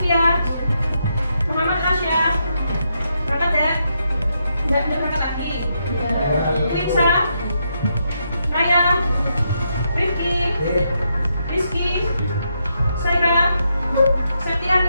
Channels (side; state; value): both; inverted; correlation -0.80